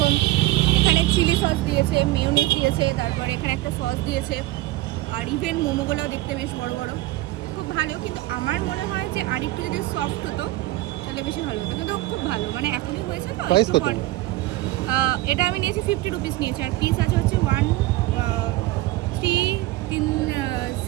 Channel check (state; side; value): quieter; left; 17.8 dB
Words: এখানে চিলি সস দিয়েছে, মেয়োনিজ দিয়েছে, তারপরে এখানে একটা সস দিয়েছে, আর ইভেন মোমোগুলোও দেখতে বেশ বড় বড়, খুব ভালো। কিন্তু আমার মনে হয় যে আরেকটু যদি সফট হতো তাহলে বেশি ভালো হতো, কিন্তু খুব ভালো। মানে এখনই হয়েছে তো একটু পর। এটা আমি নিয়েছি 50 রুপিস নিয়েছি, আর পিস আছে হচ্ছে 1 3 3